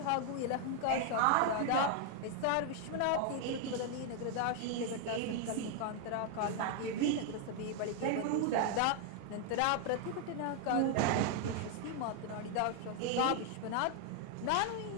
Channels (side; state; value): both; different; correlation 0.00